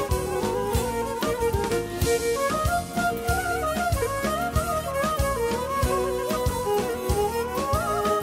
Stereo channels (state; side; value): identical; both; correlation 1.00